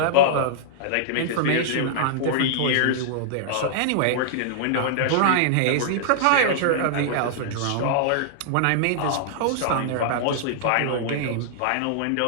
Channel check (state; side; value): different; both; correlation -0.01